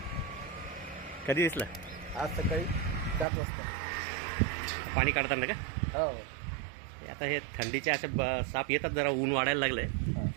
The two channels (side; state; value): left; drops out; at 3.2 s